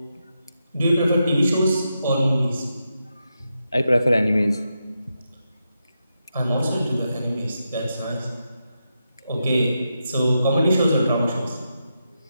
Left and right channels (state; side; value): inverted; both; correlation -0.86